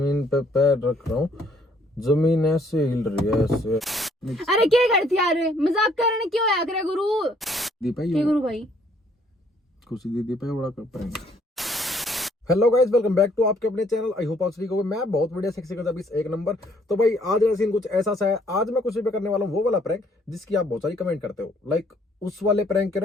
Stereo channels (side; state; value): both; normal; correlation 0.65